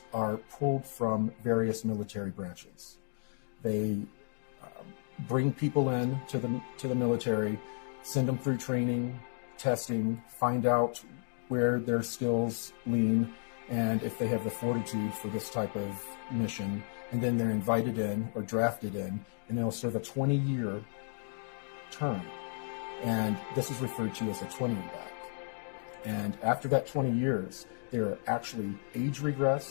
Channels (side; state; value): right; silent; digital silence